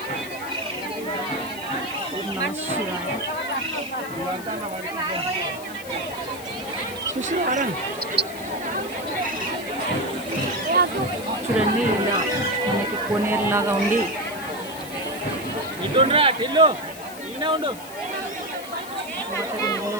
ఓం నమః శివాయ. చూడండి, ఇలా మనకి కోనేరులాగా ఉండి వాటర్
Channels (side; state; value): left; noise; hiss, 15 dB below the sound